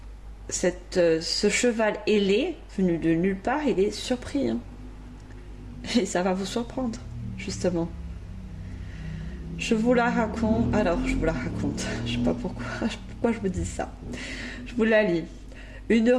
ce cheval ailé, venu de nulle part, il est surpris. Hein. Et ça va vous surprendre, justement. Je vous la raconte. Alors, je vous la raconte. Je sais pas pourquoi. pourquoi je vous dis ça. Je vous la lis. Une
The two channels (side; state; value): both; identical; correlation 1.00